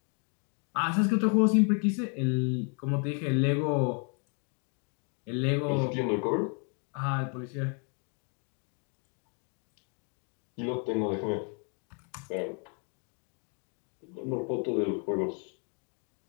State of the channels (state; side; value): quieter; right; 38.7 dB